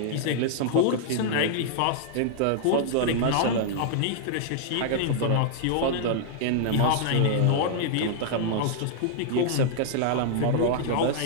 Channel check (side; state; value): both; different; correlation -0.01